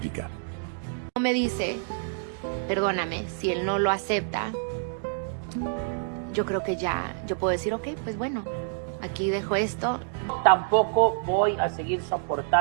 Me dice, perdóname, si él no lo acepta, yo creo que ya, yo puedo decir, ok, pues bueno, aquí dejo esto. Tampoco voy a seguir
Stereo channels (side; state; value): left; silent; digital silence